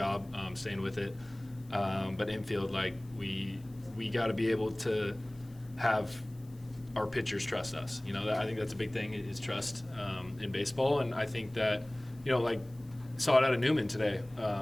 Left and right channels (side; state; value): left; noise; hiss, 28 dB below the sound